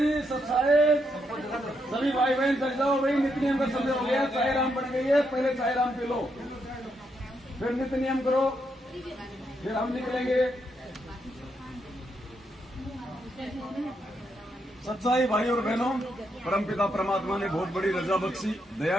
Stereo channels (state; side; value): normal; both; correlation 0.79